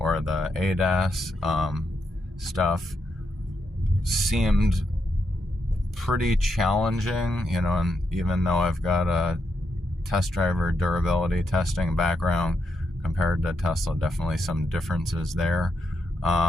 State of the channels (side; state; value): both; normal; correlation 0.82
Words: the ADAS stuff seemed pretty challenging, and even though I've got a test driver durability testing background compared to Tesla, definitely some differences there.